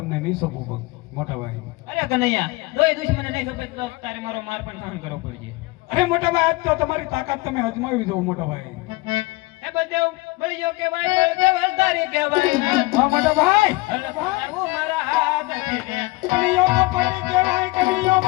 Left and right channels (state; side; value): quieter; right; 22.3 dB